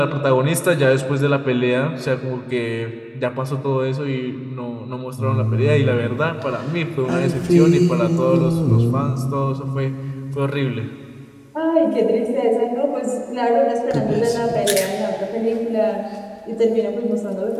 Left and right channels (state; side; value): identical; both; correlation 1.00